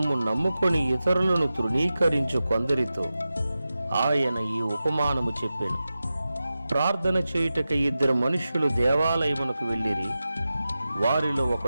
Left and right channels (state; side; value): inverted; both; correlation -0.93